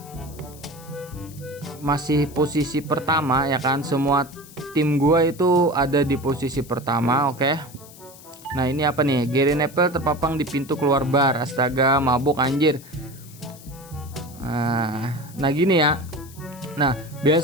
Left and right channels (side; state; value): left; noise; hiss, 20 dB below the sound